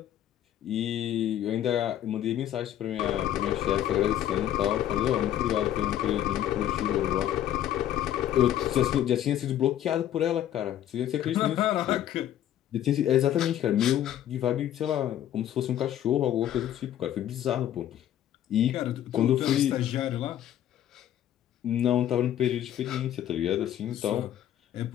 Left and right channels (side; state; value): right; quieter; 11.5 dB